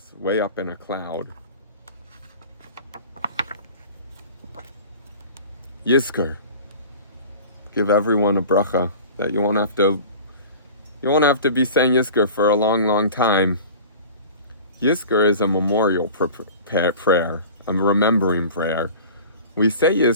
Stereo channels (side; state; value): both; inverted; correlation -0.40